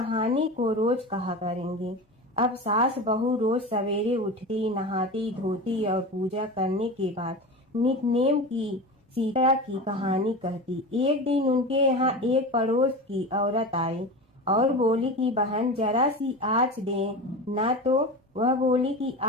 को रोज कहा करेंगे। अब सास बहू रोज सवेरे उठती, नहाती धोती और पूजा करने के बाद नित्य-नेम की सीता की कहानी कहती। एक दिन उनके यहाँ एक पड़ोस की औरत आई और बोली कि बहन जरा सी आँच दे ना। तो वह बोली कि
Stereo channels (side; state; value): both; normal; correlation 0.28